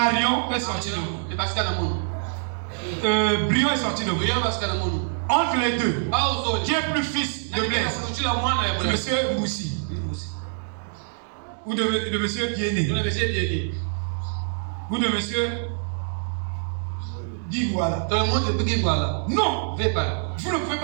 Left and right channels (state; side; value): silent; left; digital silence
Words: est sorti de vous. Brion est sorti de vous. Entre les deux, qui est plus fils de Blaise? Monsieur Moussi. Ou de monsieur Bien-Né. Ou de monsieur Guiguala. Non. Vous ne pouvez